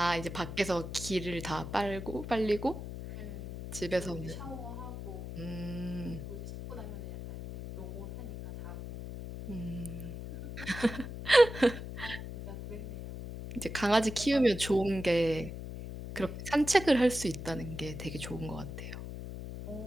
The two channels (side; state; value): left; noise; hum, 8 dB below the sound